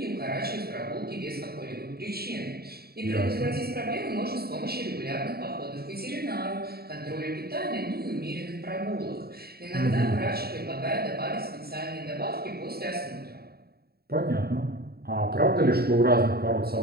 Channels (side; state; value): left; late; 0.45 ms